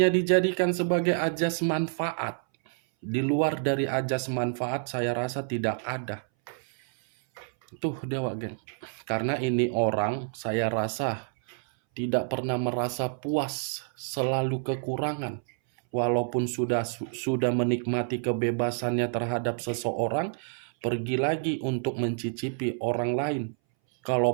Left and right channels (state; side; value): silent; left; 59 dB below the other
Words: dijadikan sebagai ajas manfaat. Di luar dari ajas manfaat saya rasa tidak ada. Tuh dewa geng. Karena ini orang saya rasa tidak pernah merasa puas, selalu kekurangan. Walaupun sudah menikmati kebebasannya terhadap seseorang, pergi lagi untuk mencicipi orang lain.